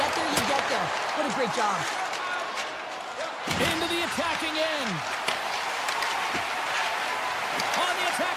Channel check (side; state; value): both; identical; correlation 1.00